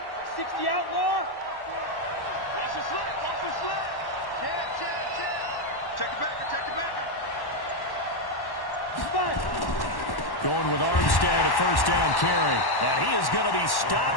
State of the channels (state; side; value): late; right; 1.1 ms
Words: 60 outlaw. Watch the slant. Check. Check the backer. Going with Armstead, a 1st down carry. And he is going to be